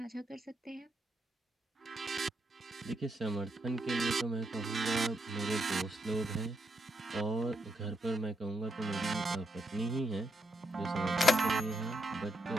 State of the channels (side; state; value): both; normal; correlation 0.80